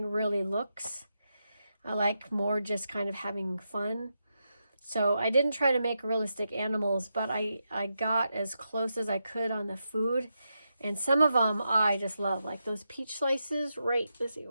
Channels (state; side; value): inverted; both; correlation -0.86